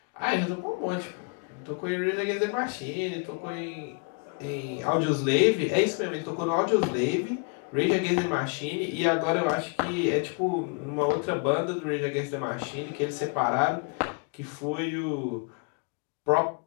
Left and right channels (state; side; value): quieter; right; 36.0 dB